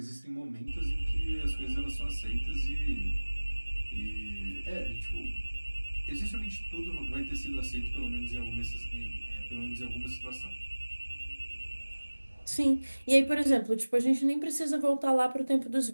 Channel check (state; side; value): inverted; both; correlation -1.00